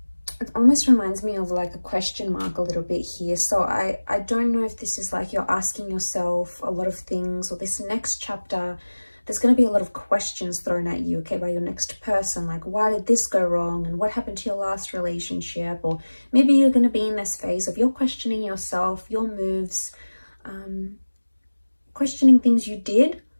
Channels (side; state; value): both; inverted; correlation -1.00